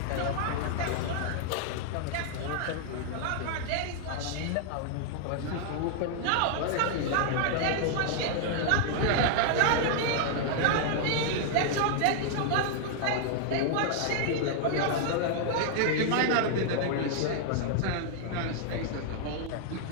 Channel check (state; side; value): different; both; correlation 0.00